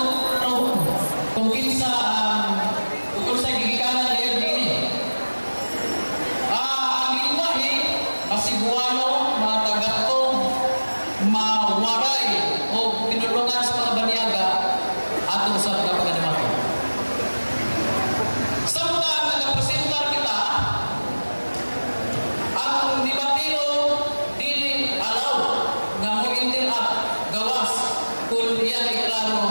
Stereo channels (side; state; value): both; inverted; correlation -1.00